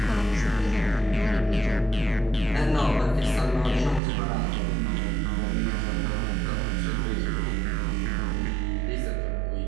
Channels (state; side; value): drops out; left; at 4.0 s